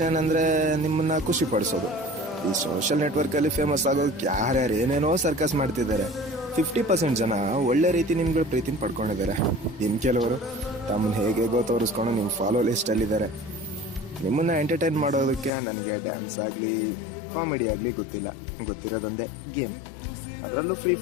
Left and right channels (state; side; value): drops out; right; at 15.5 s